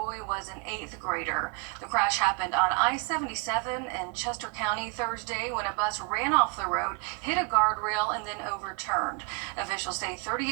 was an 8th grader. The crash happened on I-77 in Chester County Thursday when a bus ran off the road, hit a guardrail, and then overturned. Officials say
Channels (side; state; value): left; quieter; 30.8 dB